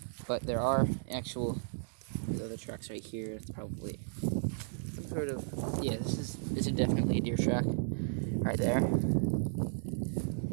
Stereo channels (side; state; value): left; silent; digital silence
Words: But there are these other tracks right here. It's probably some sort of, this is definitely a deer track right there.